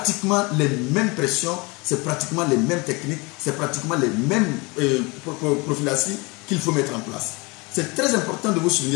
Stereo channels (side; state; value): right; quieter; 26.8 dB